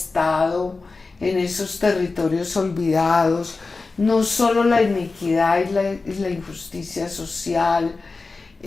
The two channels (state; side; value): quieter; right; 3.9 dB